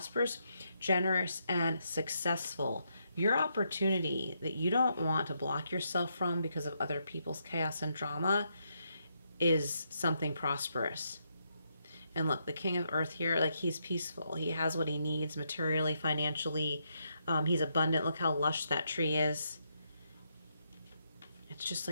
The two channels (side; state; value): both; inverted; correlation -0.79